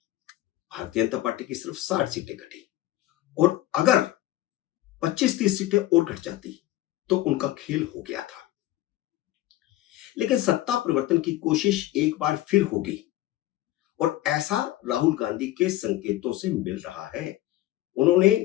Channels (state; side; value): quieter; right; 15.5 dB